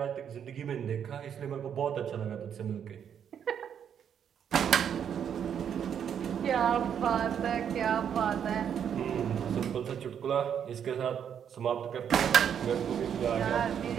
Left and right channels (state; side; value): quieter; left; 8.4 dB